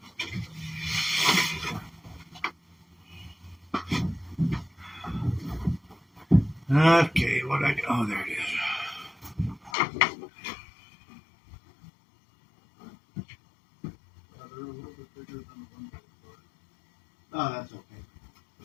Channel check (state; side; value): drops out; right; at 9.8 s